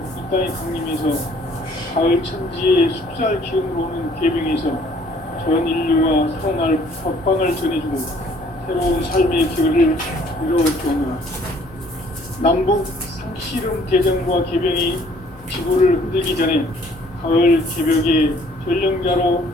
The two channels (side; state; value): both; normal; correlation 0.59